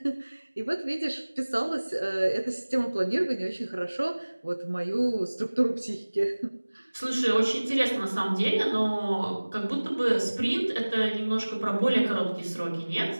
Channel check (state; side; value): inverted; both; correlation -1.00